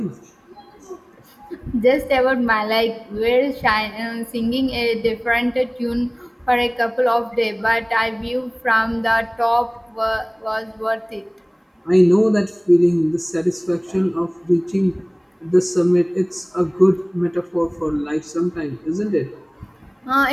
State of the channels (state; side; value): identical; both; correlation 1.00